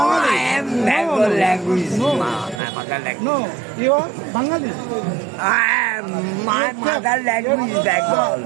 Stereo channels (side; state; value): left; drops out; at 2.6 s